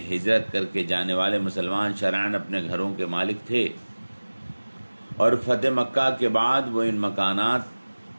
ہجرت کر کے جانے والے مسلمان شرعاً اپنے گھروں کے مالک تھے، اور فتح مکہ کے بعد وہ ان مکانات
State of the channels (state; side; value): inverted; both; correlation -1.00